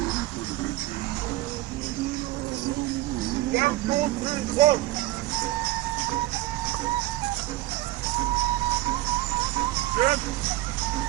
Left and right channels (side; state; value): left; quieter; 17.1 dB